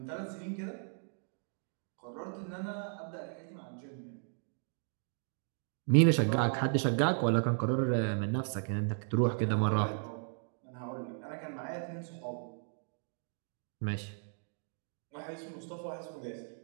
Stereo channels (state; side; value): silent; left; 54 dB below the other